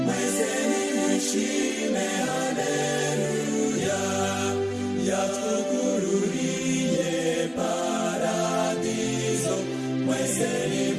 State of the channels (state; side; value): identical; both; correlation 1.00